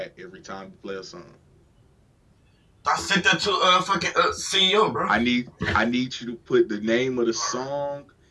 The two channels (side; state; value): both; identical; correlation 1.00